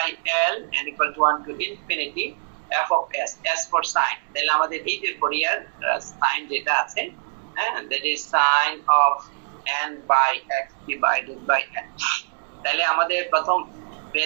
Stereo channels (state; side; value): silent; left; digital silence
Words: L and equal to 1 to infinity f of s, s for sin, তাহলে আমাদের এই যে ফুরিয়ার সাইন যেটা আছে, that is sin of n by x divided by n। তাহলে আমাদের প্রথম